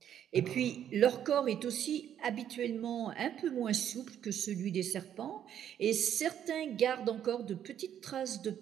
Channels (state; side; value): quieter; left; 9.9 dB